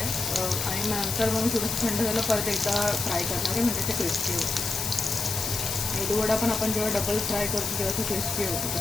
आणि नंतर मग थोडंसं थंड झालं परत एकदा फ्राय करणार आहे म्हणजे ते क्रिस्पी होते. मेदूवडा पण आपण जेव्हा डबल फ्राय करतो तेव्हा ते क्रिस्पी होतो.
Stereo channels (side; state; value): left; noise; hiss, 2 dB below the sound